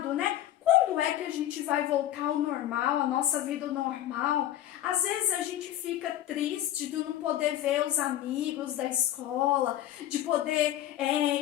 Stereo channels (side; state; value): right; quieter; 12.6 dB